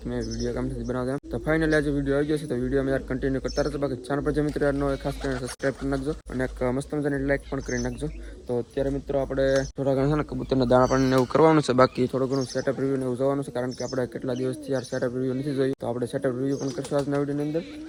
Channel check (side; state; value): both; identical; correlation 1.00